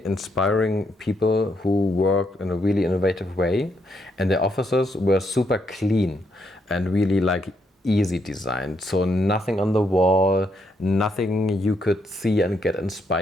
inspiring people who worked in a really innovative way, and their offices were super clean and really like easy designed. So nothing on the wall, nothing you could see and get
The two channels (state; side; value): normal; both; correlation 0.76